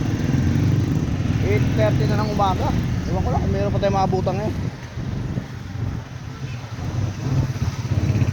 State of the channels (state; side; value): identical; both; correlation 1.00